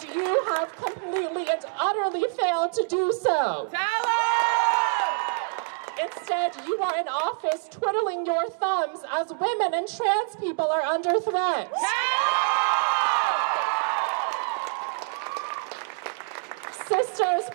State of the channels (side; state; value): left; silent; 56 dB below the other